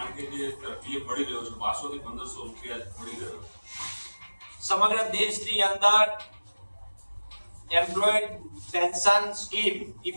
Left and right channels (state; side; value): inverted; both; correlation -1.00